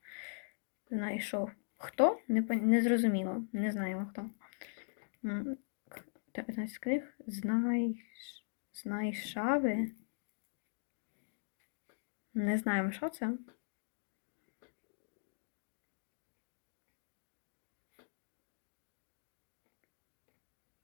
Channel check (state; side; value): silent; right; digital silence